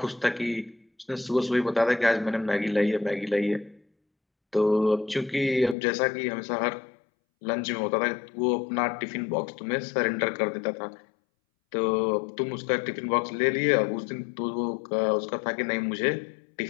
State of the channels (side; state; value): right; drops out; at 5.8 s